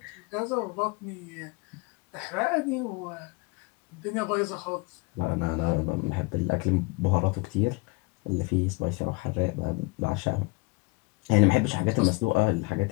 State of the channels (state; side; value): quieter; right; 26.2 dB